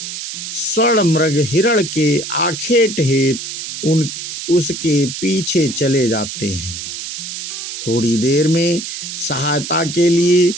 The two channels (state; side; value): noise; right; hiss, 7 dB below the sound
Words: स्वर्ण मृग हिरण के आखेट हेतु उसके पीछे चले जाते हैं। थोड़ी देर में सहायता के लिए